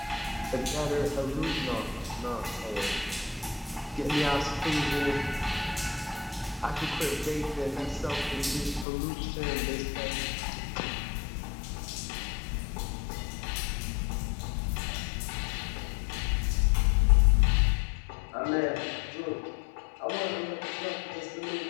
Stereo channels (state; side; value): drops out; right; at 8.8 s